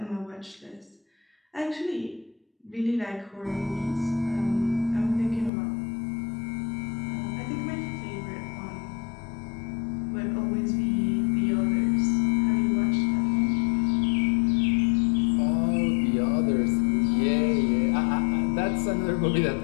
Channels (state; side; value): drops out; right; at 5.5 s